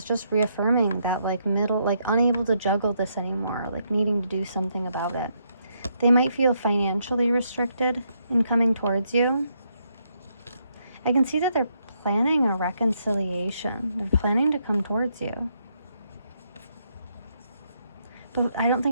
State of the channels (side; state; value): both; inverted; correlation -0.76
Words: just reaffirming that like unable to juggle this anymore, like needing to do something about it. They might feel financially restricted in coming towards you. I can see that they're planning a reconciliation. They're planning to come towards you. But I don't